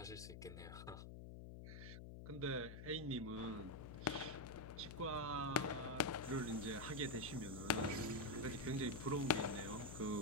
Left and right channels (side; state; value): left; noise; hum, 10 dB below the sound